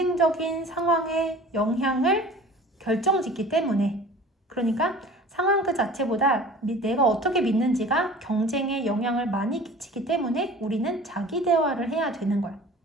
상황의 영향을 결정짓기 때문에, 그러니까 상황 그 자체보다 내가 어떻게 믿는지가 경쟁에 영향을 많이 끼치기 때문에 우리는 자기 대화를 해야 되는 거야.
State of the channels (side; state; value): both; normal; correlation 0.44